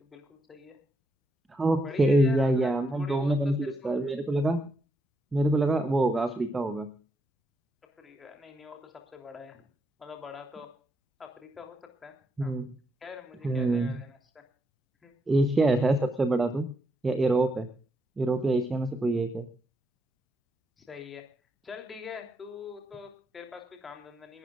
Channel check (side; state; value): both; normal; correlation 0.80